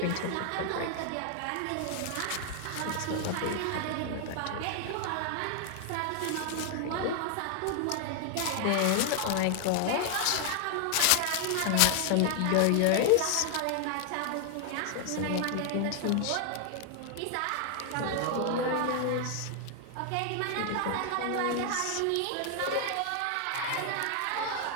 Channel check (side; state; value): both; different; correlation 0.00